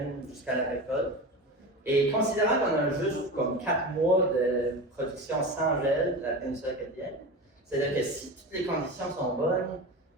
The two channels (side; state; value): both; normal; correlation 0.27